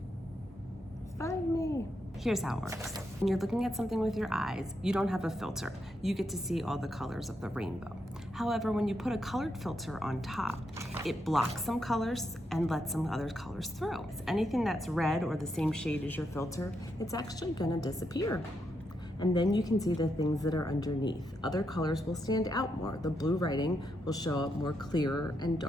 Find me. Here's how it works. When you're looking at something with your eyes, you don't have a filter. You get to see all the colors of the rainbow. However, when you put a colored filter on top, it blocks some colors and lets some other colors through. Anything that's red or the same shade as your filter, it's actually gonna disappear. And then you can see the things that are underneath. Other colors will stand out more. The blue writing will show up more clearer and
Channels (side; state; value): both; normal; correlation 0.82